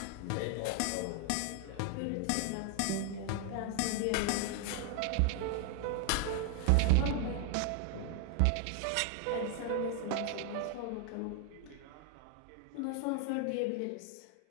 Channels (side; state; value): both; different; correlation 0.00